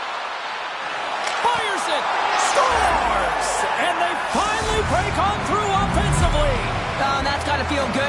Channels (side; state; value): both; identical; correlation 1.00